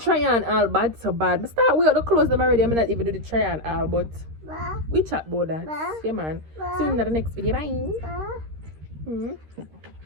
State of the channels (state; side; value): late; left; 13 ms